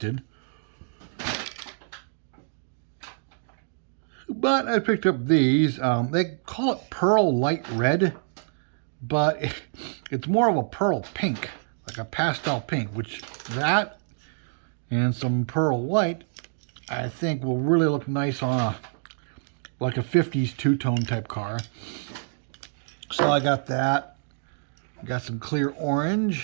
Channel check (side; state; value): left; silent; digital silence